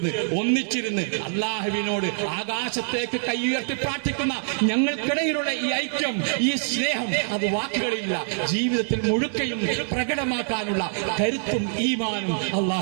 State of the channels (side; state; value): left; silent; digital silence